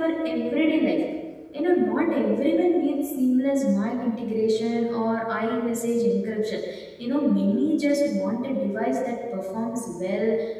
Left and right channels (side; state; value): both; identical; correlation 1.00